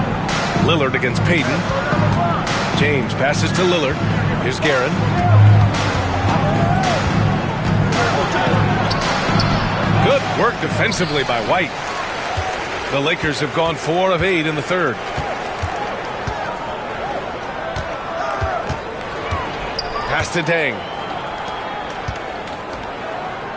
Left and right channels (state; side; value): identical; both; correlation 1.00